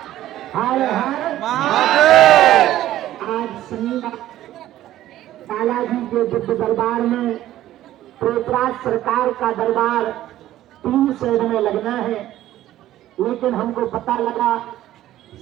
आज शनिवार बालाजी के दिव्य दरबार में प्रेतराज सरकार का दरबार 3 शेड में लगना है, लेकिन हमको पता लगा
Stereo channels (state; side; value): quieter; left; 13.7 dB